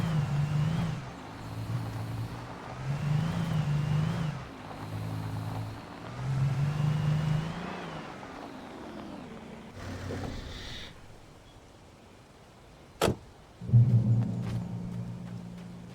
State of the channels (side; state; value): both; identical; correlation 1.00